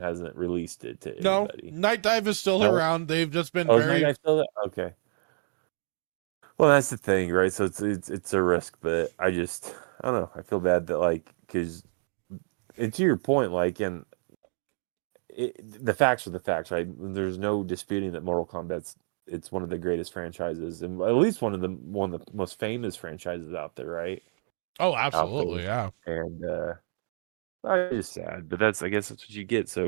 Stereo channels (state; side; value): silent; left; digital silence